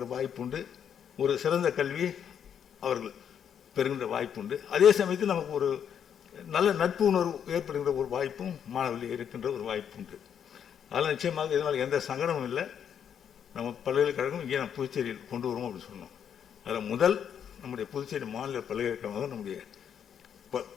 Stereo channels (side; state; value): right; quieter; 8.4 dB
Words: வாய்ப்புண்டு, ஒரு சிறந்த கல்வி அவர்கள் பெறுகின்ற வாய்ப்புண்டு. அதே சமயத்தில் நமக்கு ஒரு நல்ல நட்பு உணர்வு ஏற்படுகின்ற ஒரு வாய்ப்பும் மாணவர்கள் இருக்கின்ற ஒரு வாய்ப்புண்டு. அதனால் நிச்சயமாக இதனால் எந்த சங்கடமும் இல்லை. நம்ம பல்கலைக்கழகம் இங்கே நம்ம புதுச்சேரியில் கொண்டு வருவோம் அப்படின்னு சொன்னோம். அதில் முதல் நம்முடைய புதுச்சேரி மாநில பல்கலைக்கழகமாக நம்முடைய